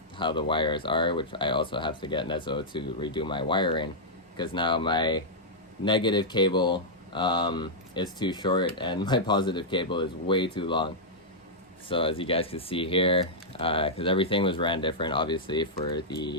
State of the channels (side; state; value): both; normal; correlation -0.08